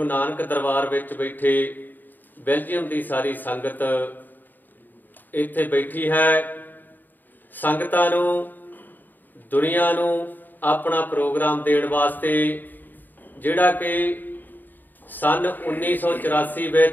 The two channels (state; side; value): late; right; 0.089 ms